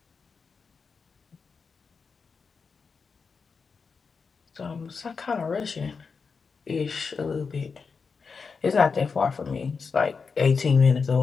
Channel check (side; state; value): right; quieter; 5.2 dB